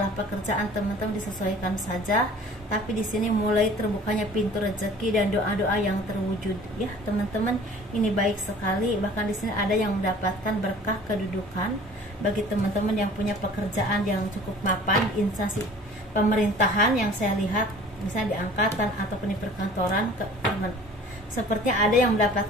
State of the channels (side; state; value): both; normal; correlation 0.48